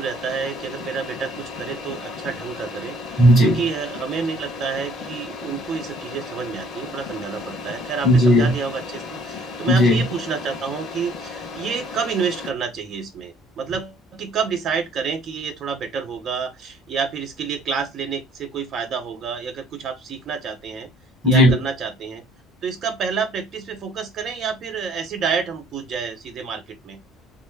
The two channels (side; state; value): both; normal; correlation 0.60